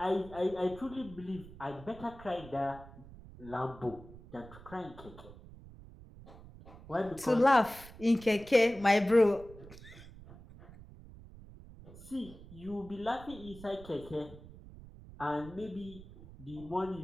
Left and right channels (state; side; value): noise; right; rumble, 18 dB below the sound